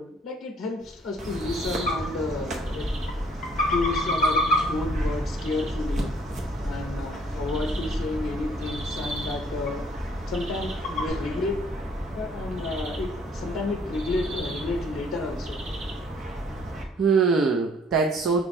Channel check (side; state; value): both; normal; correlation 0.61